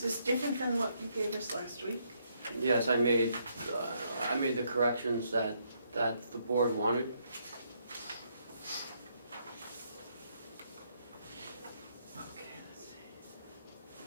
this different than what you gave us last week? Yes, I made the corrections that the board wanted. Okay, let's see.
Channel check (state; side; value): inverted; both; correlation -0.74